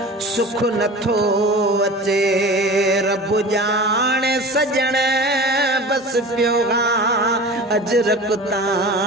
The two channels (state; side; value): normal; both; correlation 0.36